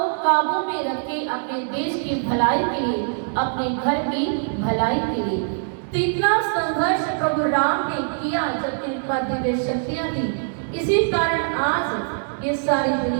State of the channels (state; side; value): silent; left; digital silence